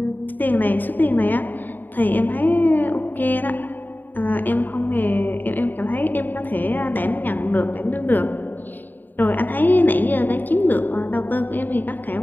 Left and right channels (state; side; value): late; right; 0.089 ms